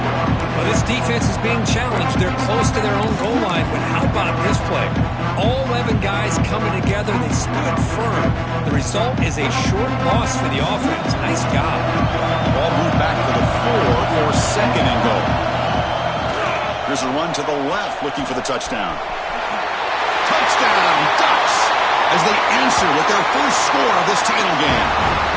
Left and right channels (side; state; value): both; identical; correlation 1.00